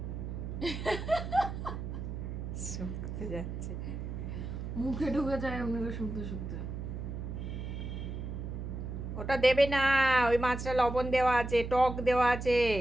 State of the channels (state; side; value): noise; right; hum, 6 dB below the sound